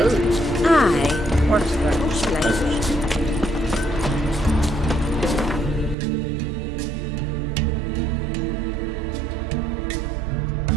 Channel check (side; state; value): left; drops out; at 6.0 s